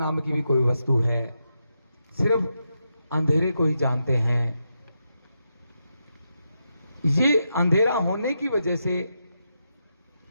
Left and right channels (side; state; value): both; inverted; correlation -0.85